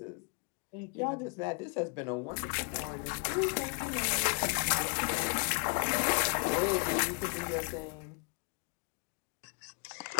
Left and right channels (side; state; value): right; quieter; 38.1 dB